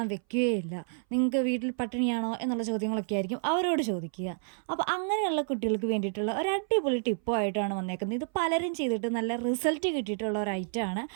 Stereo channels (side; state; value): left; silent; 58 dB below the other